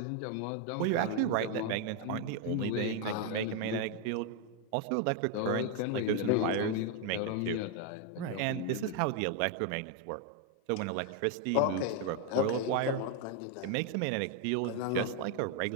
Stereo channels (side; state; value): both; different; correlation 0.01